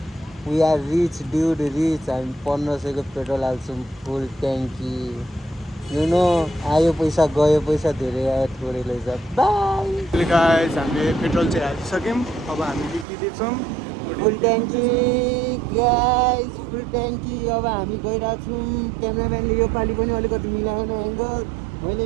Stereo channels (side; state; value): left; drops out; at 13.1 s